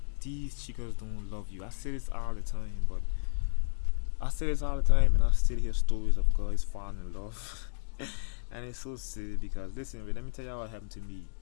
these chicas don't love you. I say this all the time, but I say this all the time, and I still hear stories of guys falling in love, and it's so silly because listen, let me tell you what happened to me.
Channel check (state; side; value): silent; right; digital silence